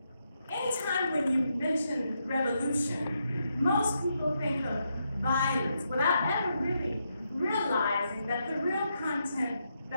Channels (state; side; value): inverted; both; correlation -0.81